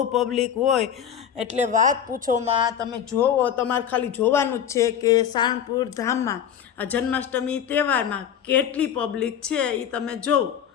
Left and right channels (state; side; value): quieter; right; 9.0 dB